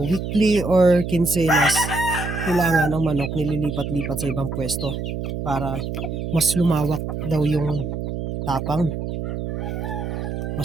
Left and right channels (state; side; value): noise; right; hum, 4 dB below the sound